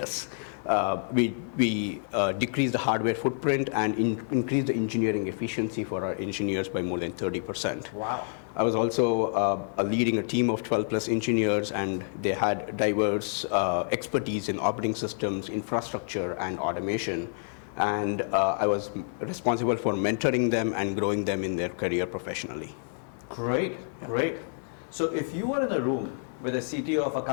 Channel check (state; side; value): silent; right; 57 dB below the other